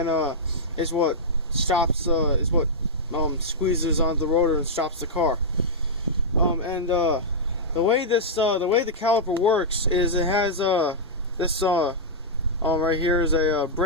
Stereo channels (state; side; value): normal; both; correlation -0.09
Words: is what squeezes onto the rotor and stops the car. The way the caliper works is it has this right here is a